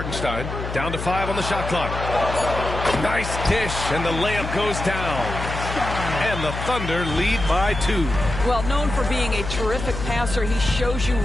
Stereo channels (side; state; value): left; noise; hum, 6 dB below the sound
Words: Down to 5 on the shot clock. Nice dish, and the layup goes down. And the Thunder lead by 2. Well, known for being a terrific passer, he shows you